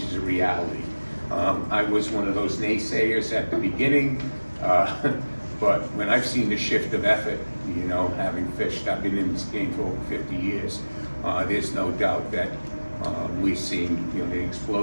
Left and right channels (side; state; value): both; inverted; correlation -1.00